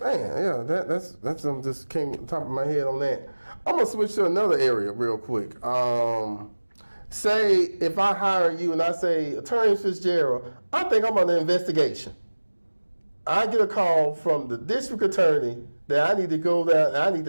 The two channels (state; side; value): inverted; both; correlation -1.00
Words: that's just came on top of my head on that. I'm gonna switch to another area real quick. Say if I hire you and I say, Attorney Fitzgerald, I think I'm under investigation. I get a call from the district attorney that I need to go there and I need